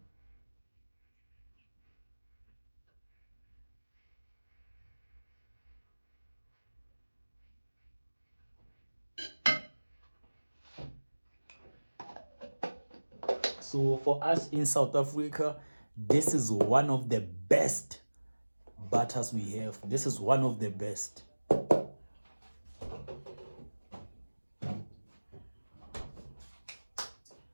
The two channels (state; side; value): inverted; both; correlation -1.00